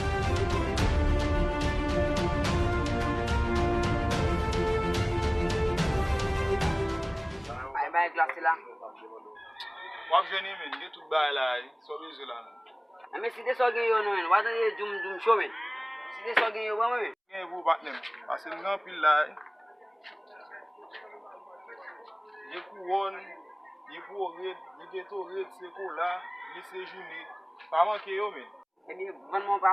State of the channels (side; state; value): both; identical; correlation 1.00